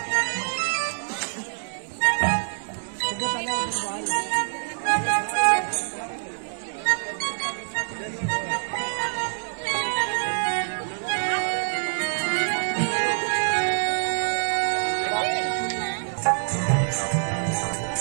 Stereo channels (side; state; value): left; silent; 61 dB below the other